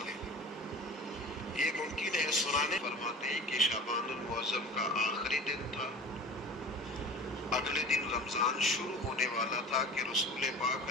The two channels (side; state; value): both; normal; correlation 0.38